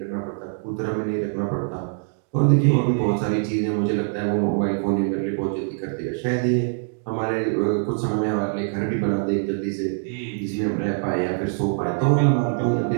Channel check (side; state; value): left; silent; digital silence